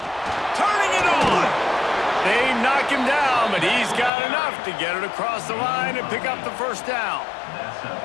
Turning it on! They knock him down, but he's got enough to get it across the line and pick up the 1st down.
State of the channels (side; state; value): right; drops out; at 4.1 s